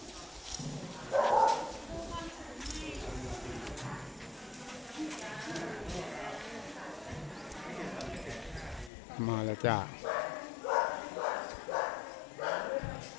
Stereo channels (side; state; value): right; drops out; at 8.9 s